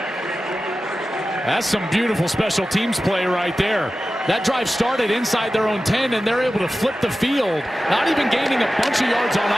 That's some beautiful special teams play right there. That drive started inside their own 10, and they're able to flip the field. Not even gaining a bunch of yards on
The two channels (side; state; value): both; normal; correlation 0.94